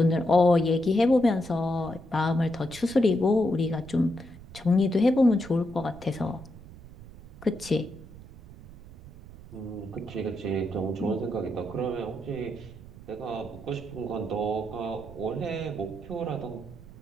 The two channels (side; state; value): right; noise; rumble, 18 dB below the sound